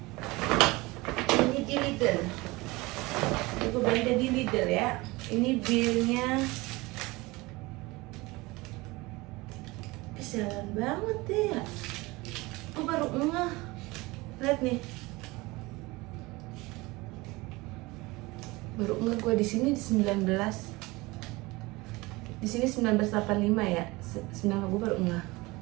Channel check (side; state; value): left; quieter; 22.4 dB